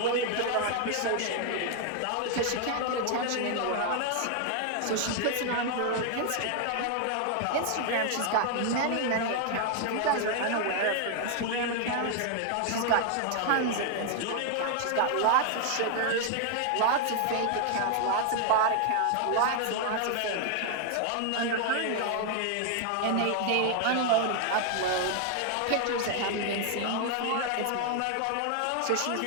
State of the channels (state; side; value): different; both; correlation 0.00